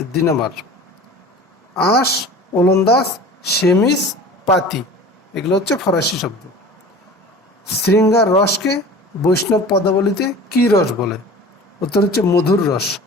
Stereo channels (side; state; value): both; normal; correlation 0.40